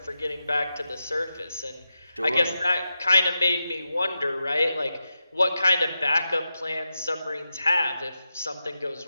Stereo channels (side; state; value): both; inverted; correlation -0.90